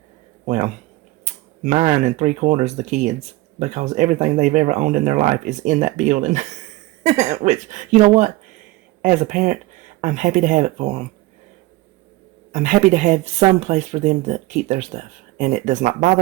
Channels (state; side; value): quieter; left; 19.3 dB